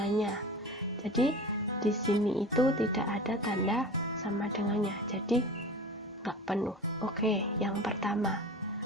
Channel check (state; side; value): normal; both; correlation 0.35